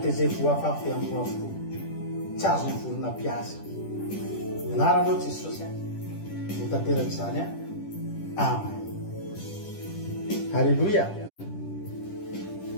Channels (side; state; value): right; late; 10 ms